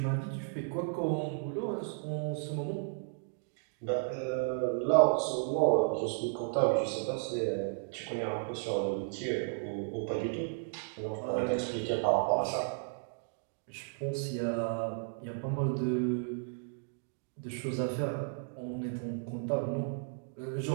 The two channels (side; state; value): left; silent; digital silence